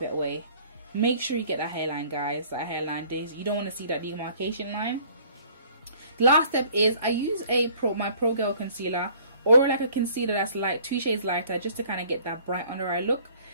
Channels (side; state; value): both; inverted; correlation -0.54